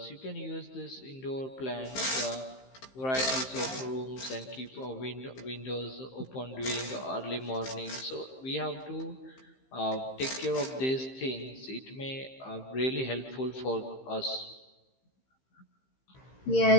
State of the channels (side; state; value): right; late; 15 ms